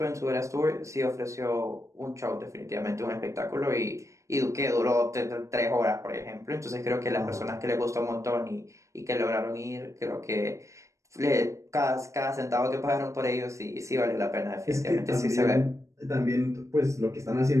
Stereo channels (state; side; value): late; left; 0.15 ms